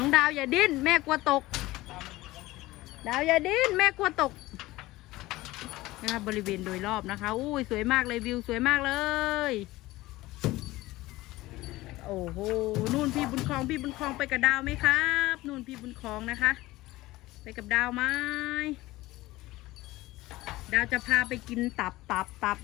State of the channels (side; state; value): right; quieter; 18.5 dB